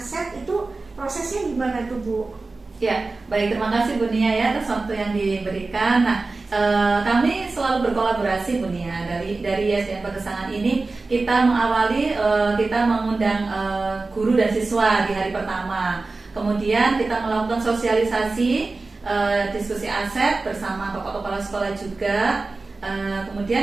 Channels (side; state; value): left; quieter; 3.6 dB